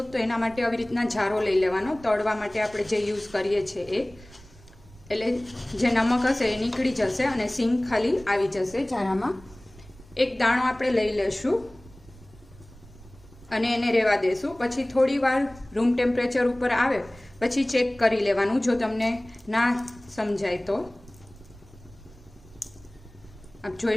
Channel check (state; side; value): noise; right; rumble, 22 dB below the sound